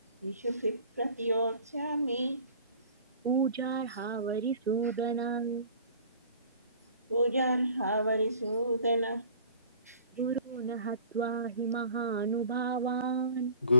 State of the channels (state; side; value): inverted; both; correlation -0.46